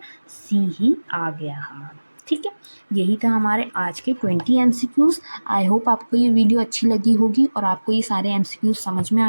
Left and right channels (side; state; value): both; inverted; correlation -1.00